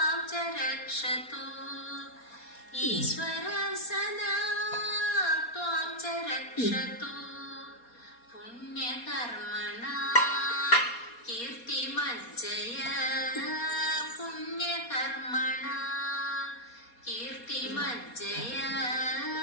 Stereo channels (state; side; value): late; right; 4.2 ms